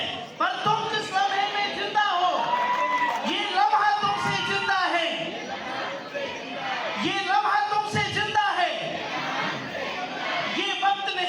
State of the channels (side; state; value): both; identical; correlation 1.00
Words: पर तुम जिस लम्हे में जिंदा हो, ये लम्हा तुमसे जिंदा है, ये लम्हा तुमसे जिंदा है। ये वक्त